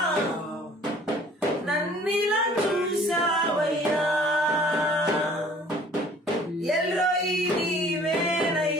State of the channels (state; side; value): normal; both; correlation 0.53